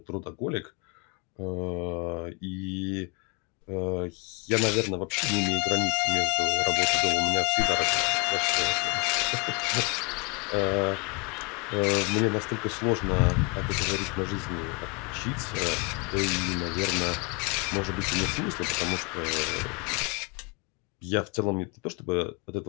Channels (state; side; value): quieter; right; 31.8 dB